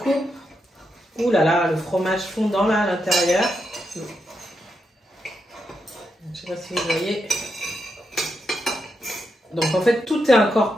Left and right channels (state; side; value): normal; both; correlation 0.83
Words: Ouh là là, le fromage fondant là à l'intérieur. Je sais pas si vous voyez. Donc en fait, tout est